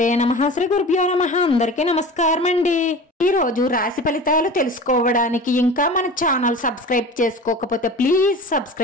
నమః. శ్రీ గురుభ్యో నమః. అందరికీ నమస్కారం అండి. ఈ రోజు రాశి ఫలితాలు తెలుసుకోవడానికి ఇంకా మన ఛానల్ సబ్స్క్రైబ్ చేసుకోకపోతే ప్లీజ్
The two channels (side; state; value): both; normal; correlation 0.36